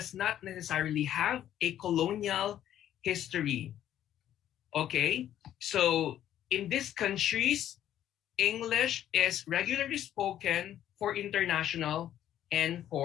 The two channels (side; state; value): right; quieter; 11.4 dB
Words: not necessarily have a colonial history. Okay? So in these countries, English is regularly spoken for international and